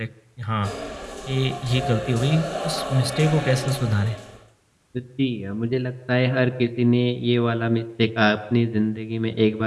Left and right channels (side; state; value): both; identical; correlation 1.00